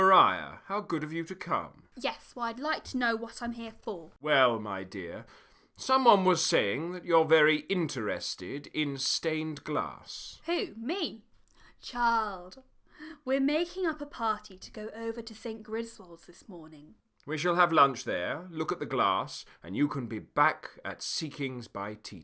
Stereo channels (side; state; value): both; identical; correlation 1.00